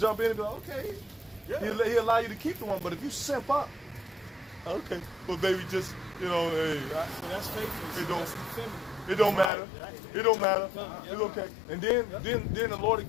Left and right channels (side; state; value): right; drops out; at 9.5 s